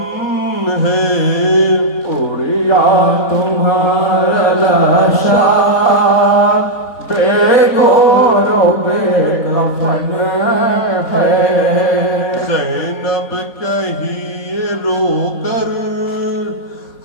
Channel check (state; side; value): late; right; 4.2 ms